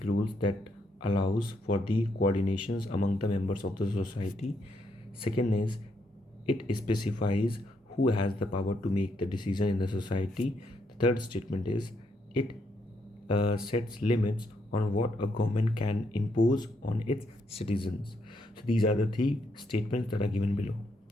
rules that allows for the coordinations among the members of the society. Second is, it specifies who has the power to make the decision in the society. The third statement is, it sets limits on what a government can impose on its citizens. So these are the three statements that are given below.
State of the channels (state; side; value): normal; both; correlation 0.76